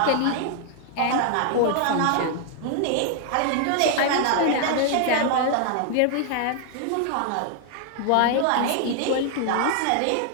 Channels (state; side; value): different; both; correlation 0.00